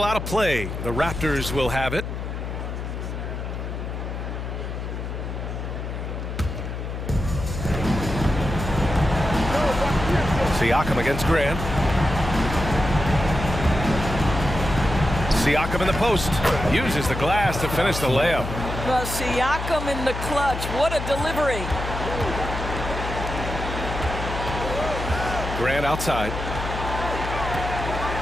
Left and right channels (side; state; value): left; noise; hum, 5 dB below the sound